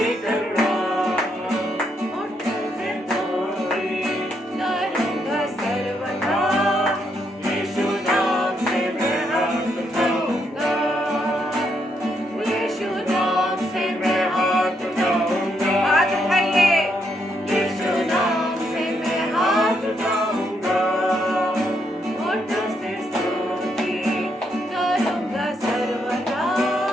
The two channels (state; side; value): normal; both; correlation 0.76